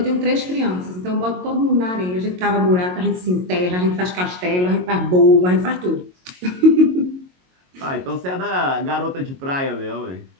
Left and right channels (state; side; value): late; left; 22 ms